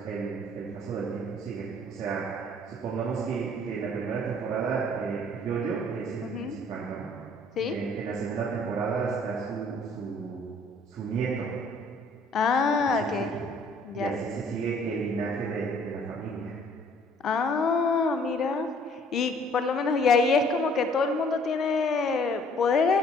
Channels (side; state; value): both; normal; correlation 0.58